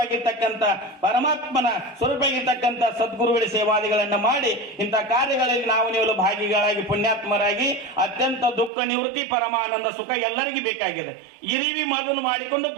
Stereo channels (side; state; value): left; drops out; at 8.7 s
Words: ಪರಮಾತ್ಮನ ಸ್ವರೂಪವಾಗಿರ್ತಕ್ಕಂಥ ಸದ್ಗುರುಗಳ ಸೇವಾದಿಗಳನ್ನ ಮಾಡಿ ಇಂಥ ಕಾರ್ಯಗಳಲ್ಲಿ ನಾವು ನೀವು ಭಾಗಿಗಳಾಗಿ ಪುಣ್ಯಾತ್ಮರಾಗಿ ಅತ್ಯಂತ ದುಃಖ ನಿವೃತ್ತಿ ಪರಮಾನಂದ ಸುಖ ಎಲ್ಲರಿಗೂ ಬೇಕಾಗಿದೆ. ಇರಿವಿ ಮೊದಲು ಮಾಡಿಕೊಂಡು